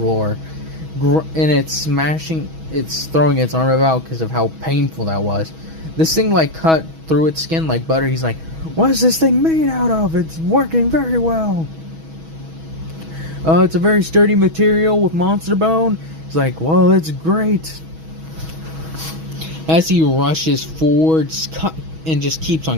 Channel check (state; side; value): late; left; 6.2 ms